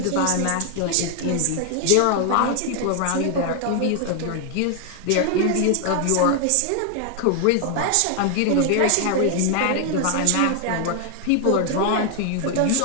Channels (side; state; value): both; different; correlation 0.00